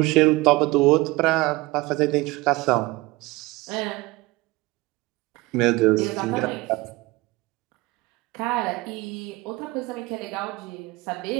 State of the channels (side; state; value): left; quieter; 21.2 dB